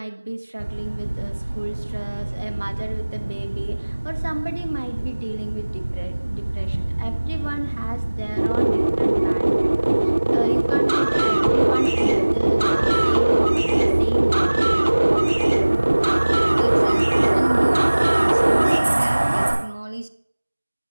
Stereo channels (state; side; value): inverted; both; correlation -1.00